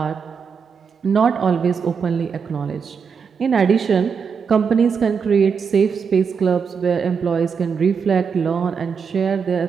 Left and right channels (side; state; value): left; quieter; 6.1 dB